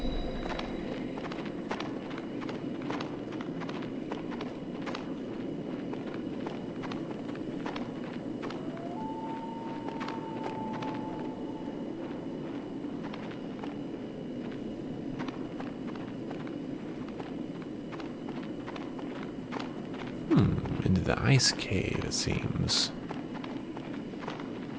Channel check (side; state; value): both; identical; correlation 1.00